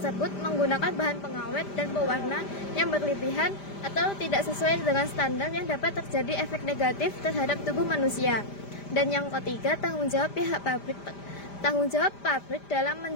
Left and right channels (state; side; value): late; right; 5.0 ms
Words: menggunakan bahan pengawet dan pewarna yang berlebihan atau tidak sesuai dengan standar yang dapat terjadi efek negatif terhadap tubuh manusia. Dan yang ketiga, tanggung jawab pabrik dalam